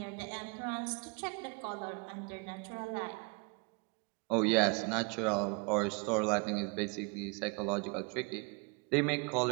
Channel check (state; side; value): quieter; left; 31.6 dB